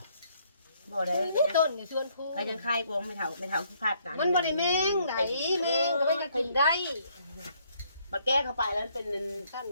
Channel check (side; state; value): both; inverted; correlation -0.68